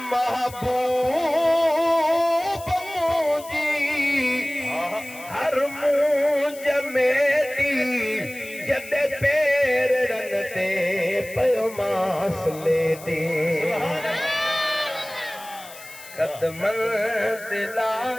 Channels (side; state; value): left; noise; hiss, 17 dB below the sound